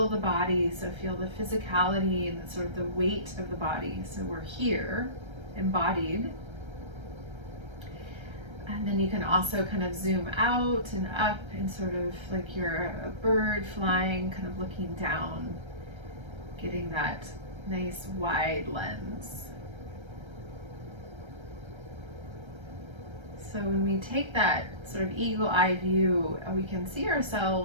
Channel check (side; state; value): left; late; 1.3 ms